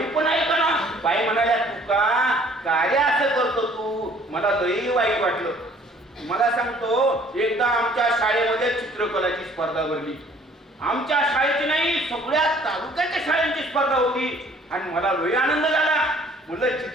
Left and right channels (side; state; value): both; normal; correlation 0.56